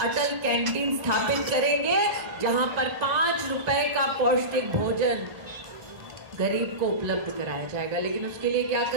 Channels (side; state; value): left; late; 1.9 ms